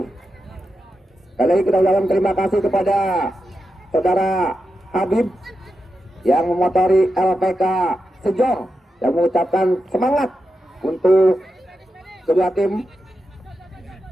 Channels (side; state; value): both; normal; correlation 0.88